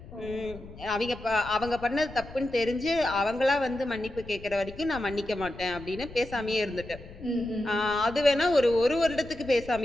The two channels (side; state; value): left; noise; rumble, 16 dB below the sound